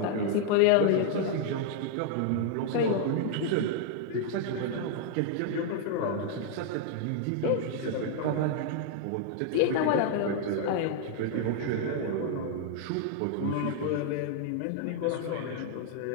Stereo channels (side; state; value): both; different; correlation 0.00